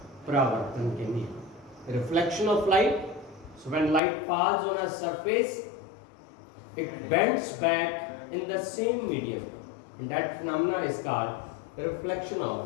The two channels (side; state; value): right; drops out; at 4.0 s